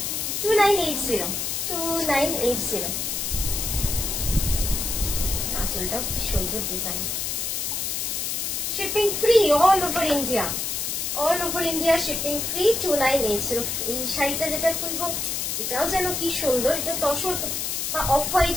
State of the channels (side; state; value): left; noise; hiss, 1 dB below the sound